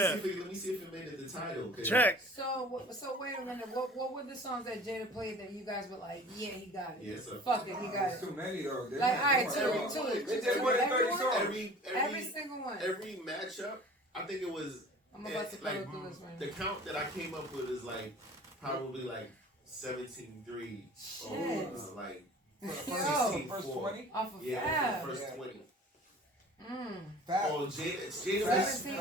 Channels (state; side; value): normal; both; correlation 0.45